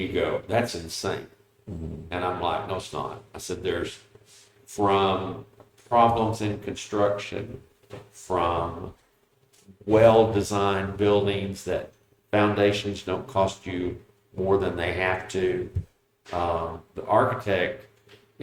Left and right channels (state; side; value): identical; both; correlation 1.00